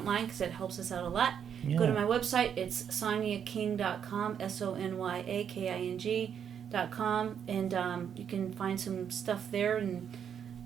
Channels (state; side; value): quieter; left; 8.2 dB